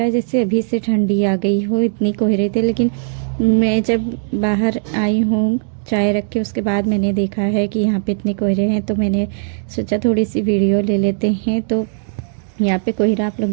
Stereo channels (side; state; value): left; silent; digital silence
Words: जैसे अभी से ठंडी आ गई हो, इतनी कोहरे थे। लेकिन मैं जब बाहर आई हूँ चाय रख के, उसके बाद मैंने देखा है कि यहाँ पे इतने कोहरे हैं, तो मैंने सोचा थोड़ी सी वीडियो ले लेते हैं। तो यहाँ पे कोहरा आप लोग